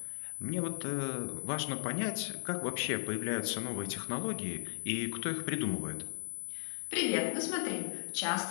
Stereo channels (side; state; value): right; silent; digital silence